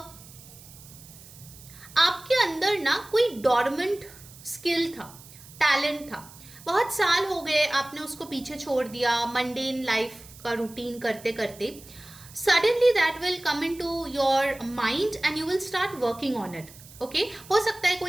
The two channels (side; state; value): right; noise; hiss, 20 dB below the sound